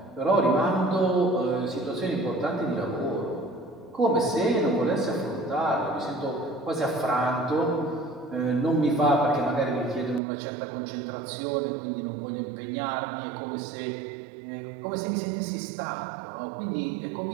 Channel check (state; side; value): drops out; left; at 10.2 s